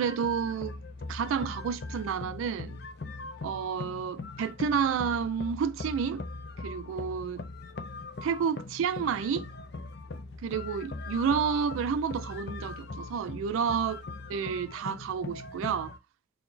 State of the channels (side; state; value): left; quieter; 5.2 dB